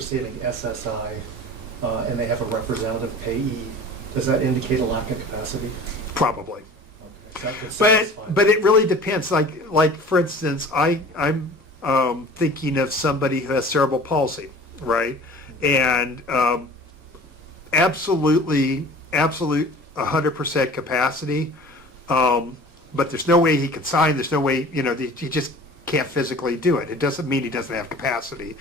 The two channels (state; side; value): normal; both; correlation 0.43